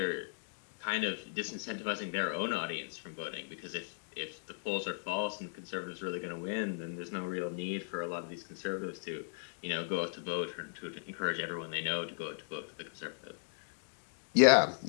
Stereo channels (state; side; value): silent; right; digital silence